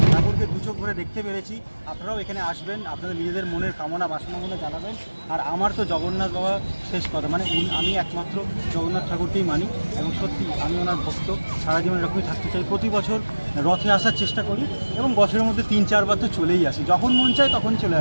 ঠাকুরকে 2 চোখ ভরে দেখতে পেরেছি। আপনারাও এখানে আসবেন, আপনাদের নিজেদের মনের কামনা বাসনা মনে জানাবেন। আর আমার তো জগন্নাথ বাবা শেষ কথা, মানে আমি একমাত্র জগন্নাথ ঠাকুরকেই মানি এবং সত্যি আমি ওনার ভক্ত, সারা জীবন এরকমই থাকতে চাই। প্রতি বছর রথে আসার চেষ্টা করি এবং বছরের মধ্যে 3-4 বার তো চলেই আসি, যখন মন চায় তখন চলে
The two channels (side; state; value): both; inverted; correlation -1.00